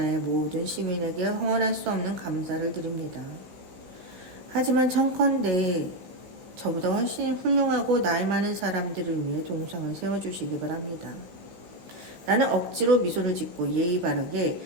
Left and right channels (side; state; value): left; late; 16 ms